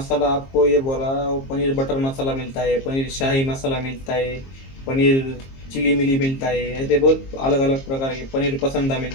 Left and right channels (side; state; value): right; late; 22 ms